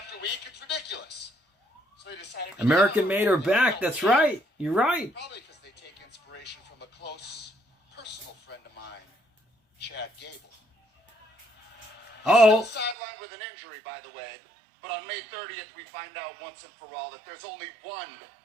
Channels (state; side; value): drops out; left; at 13.0 s